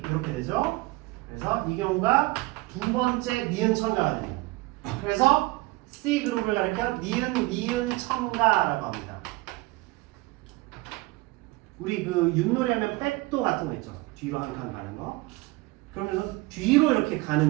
이렇게 되죠. 그래서 이 경우가 두 번째 니은 첨가가 됩니다. 그래서 C 그룹을 가리켜 니은 첨가라고 합니다. 우리 그 윷놀이 하면 백도 같은 거 있죠. 뒤로 한 칸 가는 거. 그러면서 뒤로 이렇게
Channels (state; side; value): quieter; left; 22.0 dB